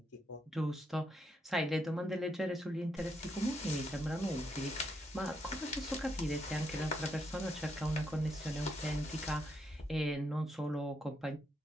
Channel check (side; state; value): both; normal; correlation 0.78